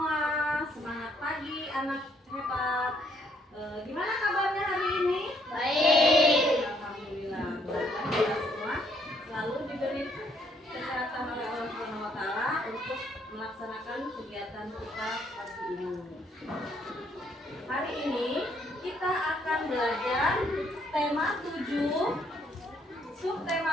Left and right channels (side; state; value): both; normal; correlation 0.69